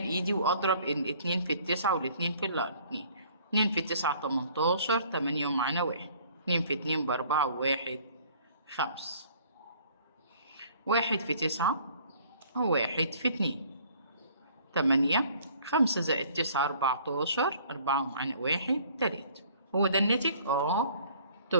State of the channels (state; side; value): inverted; both; correlation -0.56